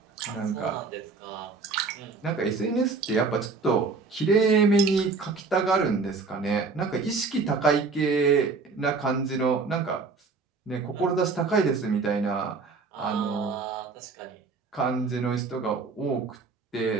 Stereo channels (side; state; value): left; quieter; 4.4 dB